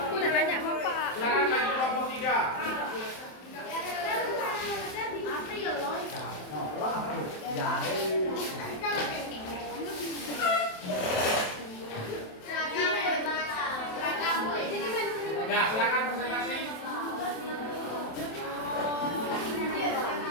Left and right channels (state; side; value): late; right; 27 ms